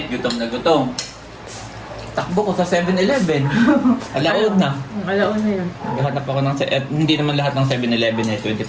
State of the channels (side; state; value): both; identical; correlation 1.00